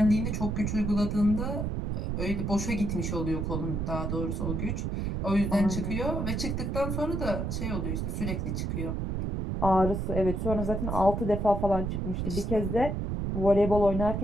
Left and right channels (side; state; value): right; noise; rumble, 2 dB below the sound